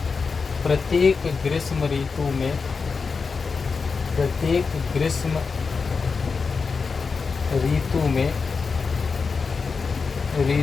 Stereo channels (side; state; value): right; quieter; 4.9 dB